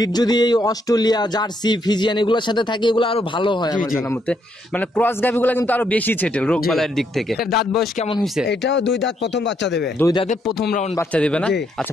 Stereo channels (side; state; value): both; normal; correlation 0.74